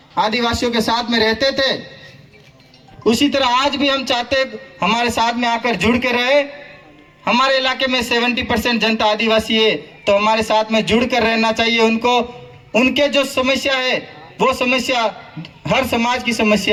आदिवासियों के साथ में रहते थे, उसी तरह आज भी हम चाहते हमारे साथ में आकर जुड़ के रहे। हमारे इलाके में 70% जनता आदिवासी है, तो हमारे साथ में जुड़ कर रहना चाहिए उनको। उनके जो समस्या है वो समस्या हर समाज की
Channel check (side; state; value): both; identical; correlation 1.00